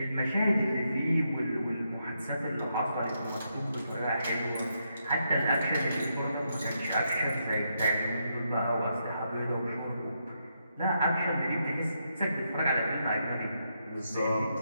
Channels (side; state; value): both; inverted; correlation -0.81